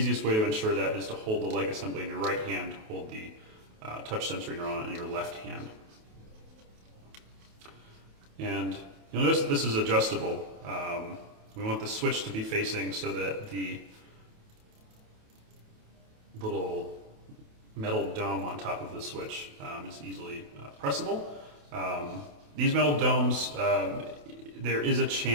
way to ensure that is to hold the leg assembly in your right hand, hold the touch sensory neuron in your left hand. And you'll notice that this is adjustable. We want the switch to be facing so that the little metal dome on top of the switch is easily pressable. These metal domes, there is a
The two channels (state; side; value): late; left; 28 ms